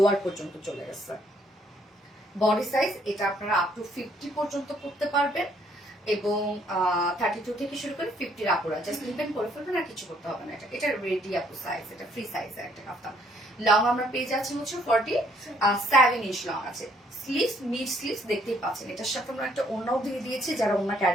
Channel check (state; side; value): normal; both; correlation 0.67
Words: পর্যন্ত চলে গেছে। বডি সাইজ এটা আপনারা আপ টু 50 পর্যন্ত করতে পারবেন এবং 32 থেকে শুরু করে 50 আপুরা জাস্ট লিপেন করে ফেলবেন, আর কিছু করতে হবে না। এটা রেডি আপু সাইজ, এটা ফ্রি সাইজের একটা কাফতান। লং আমরা পেয়ে যাচ্ছি হচ্ছে 47 ইঞ্চ লং আছে। স্লিভস মিড স্লিভস দেখতেই পাচ্ছেন। এটার সাথে আমরা একটা ওড়নাও দিয়ে দিয়েছি, যারা ওড়না